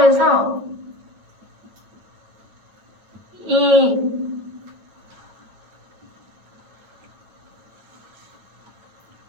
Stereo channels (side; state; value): left; late; 9.2 ms